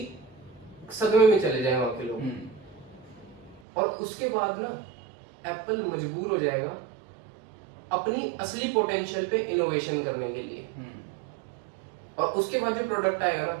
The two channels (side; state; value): left; drops out; at 3.6 s